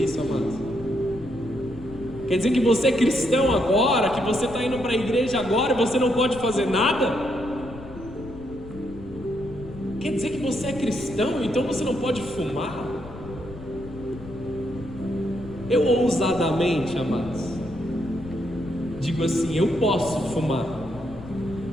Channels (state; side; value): noise; left; rumble, 15 dB below the sound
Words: isso, amados. Quer dizer que você é cristão agora, que você está indo para a igreja agora e você não pode fazer nada? Quer dizer que você é cristão, então você não pode fumar? Eu ousadamente, amados, digo assim: eu posso fumar,